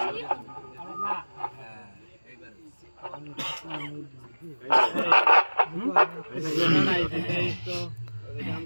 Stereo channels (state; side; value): inverted; both; correlation -1.00